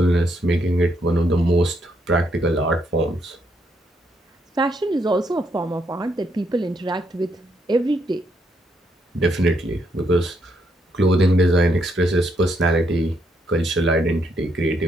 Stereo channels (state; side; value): normal; both; correlation 0.76